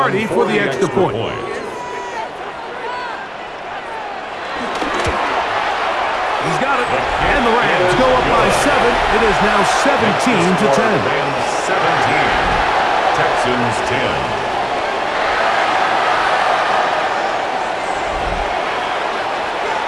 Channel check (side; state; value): both; identical; correlation 1.00